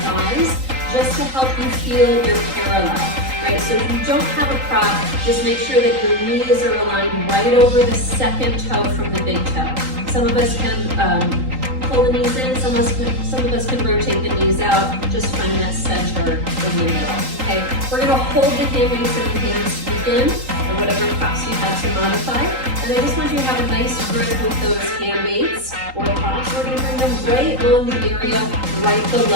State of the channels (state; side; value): late; left; 3.8 ms